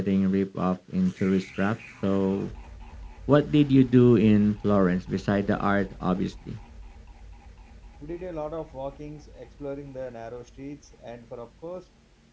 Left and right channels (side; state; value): both; identical; correlation 1.00